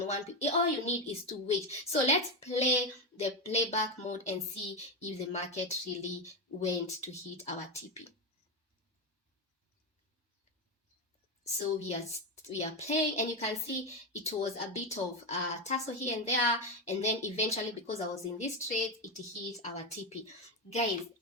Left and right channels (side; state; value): both; normal; correlation 0.12